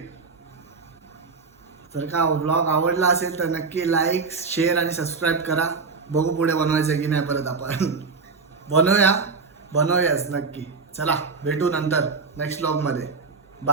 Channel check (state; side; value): quieter; left; 4.6 dB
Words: जर का व्लॉग आवडला असेल तर नक्की लाईक, शेअर आणि सबस्क्राईब करा. बघू पुढे बनवायचं की नाही परत आपण. बनवूयाच नक्की. चला भेटू नंतर नेक्स्ट व्लॉगमध्ये.